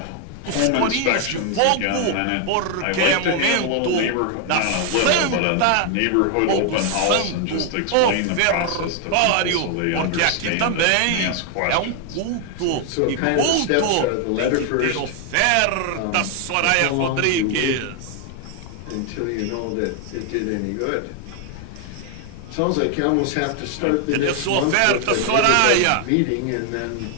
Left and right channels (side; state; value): both; different; correlation 0.00